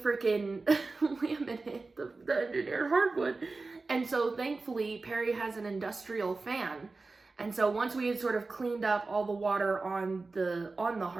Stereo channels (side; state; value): left; quieter; 3.7 dB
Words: laminate, the engineered hardwood. And so thankfully Perry has an industrial fan. And so once we had sort of cleaned up all the water on the